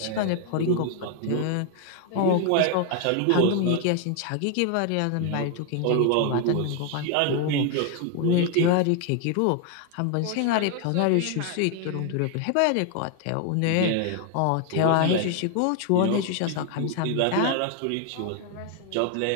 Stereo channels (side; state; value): both; different; correlation 0.01